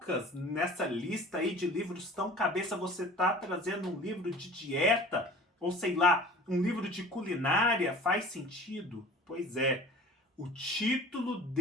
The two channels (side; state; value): both; normal; correlation 0.43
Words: nessa lista aí de livros tão cabeça, você tá trazendo um livro de dieta? Ou sei lá, um livro de culinária? Faz sentido? Pois é, o título